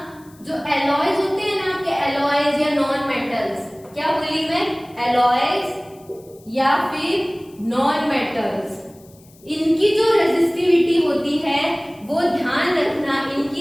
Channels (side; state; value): left; noise; hiss, 28 dB below the sound